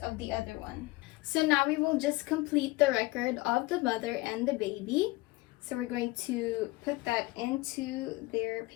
the other one. So now we will just complete the record of the mother and the baby. So we're going to put that into their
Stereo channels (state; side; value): quieter; right; 21.1 dB